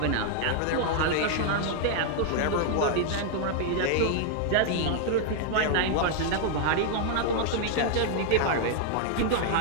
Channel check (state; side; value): different; both; correlation 0.00